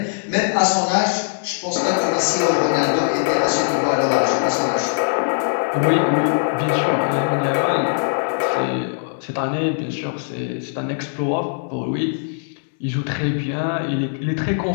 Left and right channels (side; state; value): right; silent; digital silence